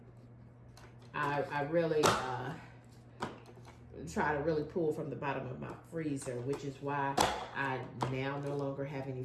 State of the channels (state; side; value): identical; both; correlation 1.00